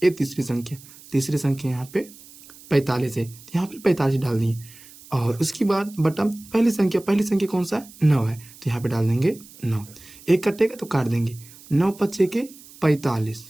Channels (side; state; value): right; noise; hiss, 21 dB below the sound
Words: ये तीसरी संख्या यहाँ पे 45 है, तो यहाँ पे 45 डाल दिए और उसके बाद बटा पहली संख्या कौन सा है 9 है, तो यहाँ पे डाल देंगे 9। एक कटेगा तो काट देंगे, 9 पच्चे के 45